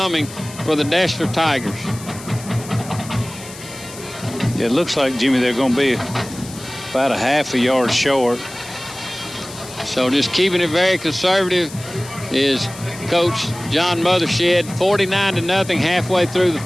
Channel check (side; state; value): left; noise; hiss, 15 dB below the sound